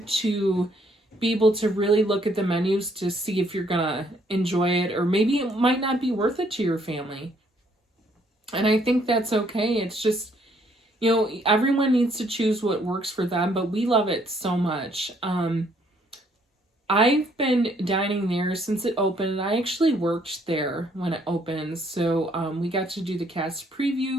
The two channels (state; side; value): normal; both; correlation 0.67